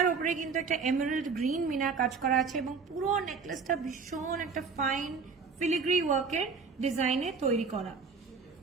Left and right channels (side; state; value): left; quieter; 5.1 dB